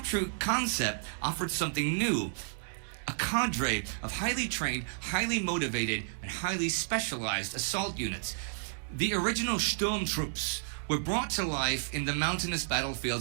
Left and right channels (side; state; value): left; silent; digital silence